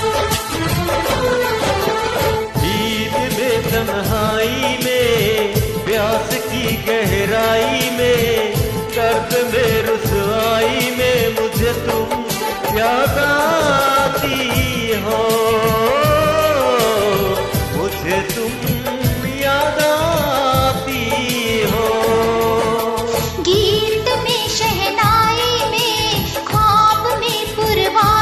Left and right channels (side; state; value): both; identical; correlation 1.00